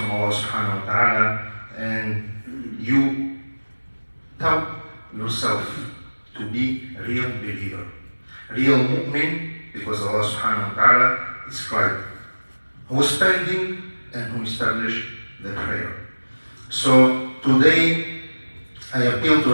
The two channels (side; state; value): both; inverted; correlation -1.00